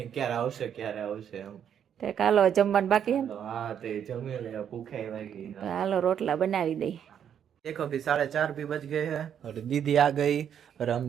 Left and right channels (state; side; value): quieter; left; 8.8 dB